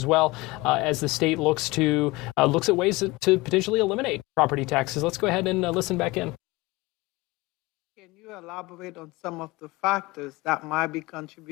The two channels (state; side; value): quieter; right; 21.8 dB